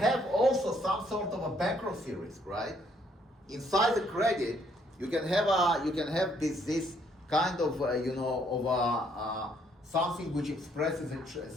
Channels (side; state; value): both; normal; correlation 0.68